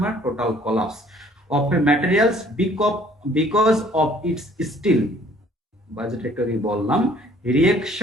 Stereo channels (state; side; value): normal; both; correlation 0.57